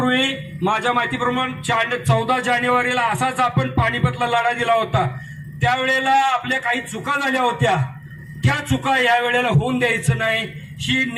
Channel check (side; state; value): both; identical; correlation 1.00